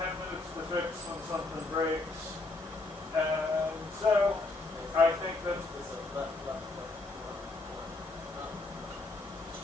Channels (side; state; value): right; quieter; 3.2 dB